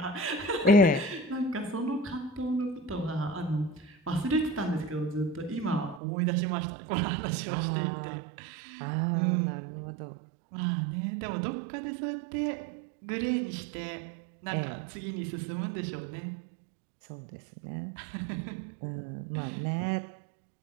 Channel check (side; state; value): left; drops out; at 6.0 s